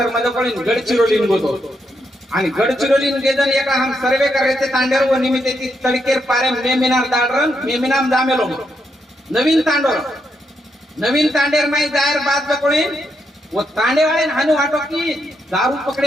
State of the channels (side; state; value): both; normal; correlation 0.80